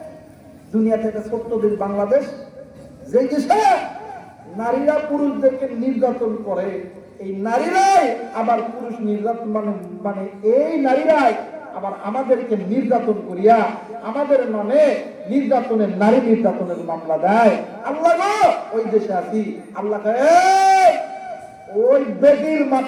দুনিয়াতে একটা ছোট্ট দেশ বাংলাদেশ, যে দেশে নারীরা পুরুষদেরকে নির্যাতন করে, এই নারীরাই আবার পুরুষ নির্যাতন মানে মানে এই নারীরাই আবার আমাদেরকে নির্যাতন করিয়া আমাদের নামে নির্যাতনের, নারী নির্যাতনের মামলা দেয়। আল্লাহ গো, ওই দেশে আছি, আল্লাহ ওই বেটির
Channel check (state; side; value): identical; both; correlation 1.00